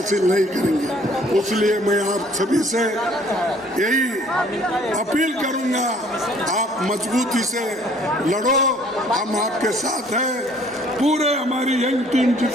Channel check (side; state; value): both; normal; correlation 0.57